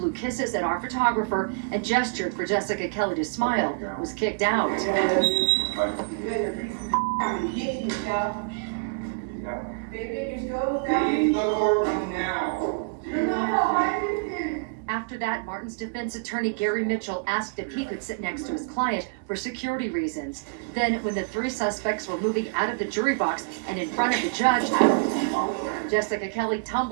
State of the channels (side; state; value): left; quieter; 34.9 dB